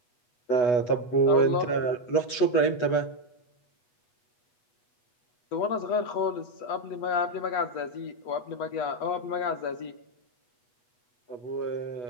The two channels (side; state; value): right; late; 8.2 ms